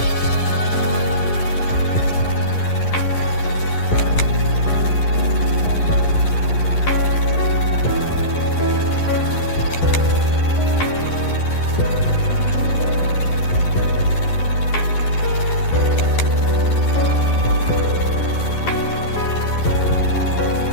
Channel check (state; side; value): late; right; 11 ms